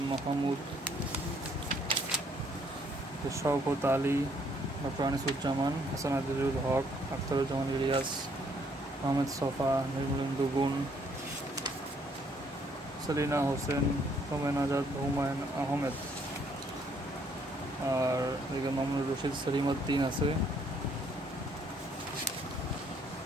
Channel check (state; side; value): normal; both; correlation 0.66